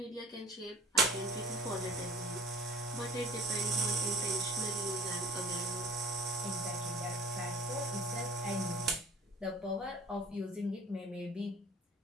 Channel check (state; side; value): normal; both; correlation 0.46